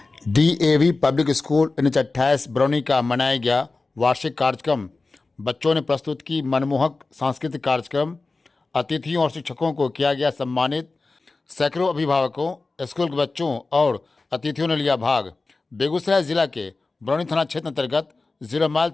DAV public school 1928 Barauni का मनाया गया वार्षिक कार्यक्रम। बच्चों ने प्रस्तुत की मनमोहक सांस्कृतिक कार्यक्रम। अतिथियों और शिक्षकों को किया गया सम्मानित। सैकड़ों अभिभावकों, स्कूल के बच्चों और अतिथियों ने लिया भाग। बेगूसराय जिला के बरौनी थाना क्षेत्र अंतर्गत 0 माइल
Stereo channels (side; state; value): right; quieter; 3.6 dB